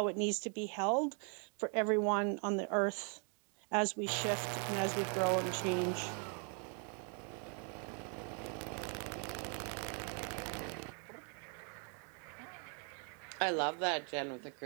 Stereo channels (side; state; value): left; quieter; 39.8 dB